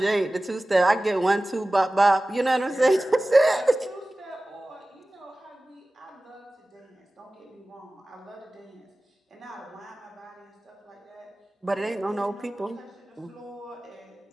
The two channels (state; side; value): normal; both; correlation 0.97